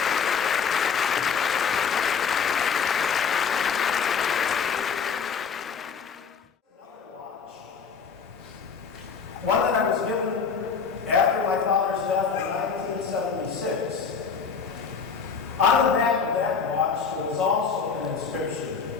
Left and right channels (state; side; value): quieter; right; 6.0 dB